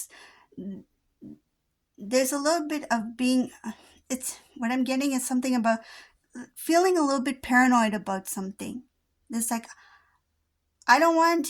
a little bit of being, it's what I'm getting is something about feeling a little bit paranoid about something. It's like I don't want,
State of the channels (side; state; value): both; identical; correlation 1.00